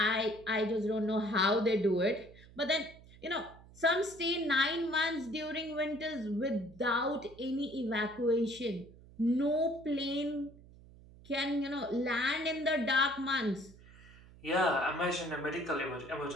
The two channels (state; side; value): noise; right; hum, 22 dB below the sound